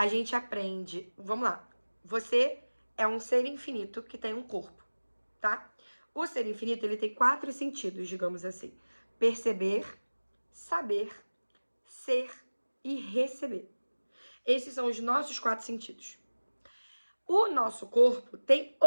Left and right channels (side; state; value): both; inverted; correlation -1.00